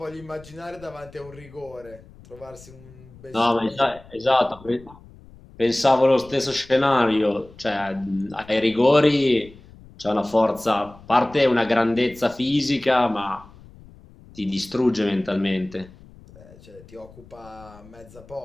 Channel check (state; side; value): noise; left; rumble, 22 dB below the sound